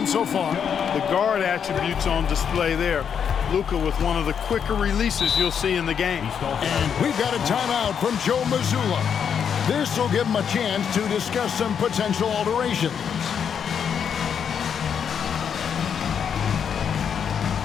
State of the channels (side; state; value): right; quieter; 7.6 dB